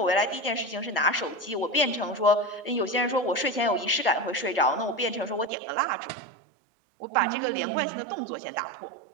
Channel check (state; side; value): drops out; left; at 5.5 s